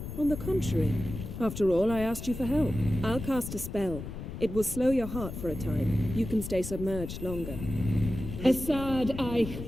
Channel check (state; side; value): noise; left; rumble, 8 dB below the sound